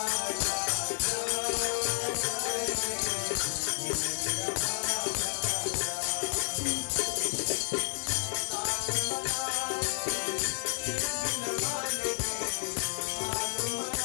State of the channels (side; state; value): right; silent; 57 dB below the other